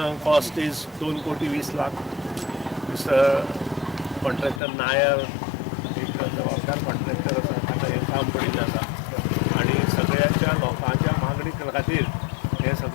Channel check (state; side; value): drops out; right; at 4.6 s